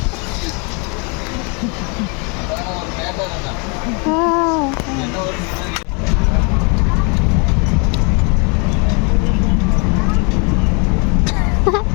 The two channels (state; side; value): quieter; right; 33.6 dB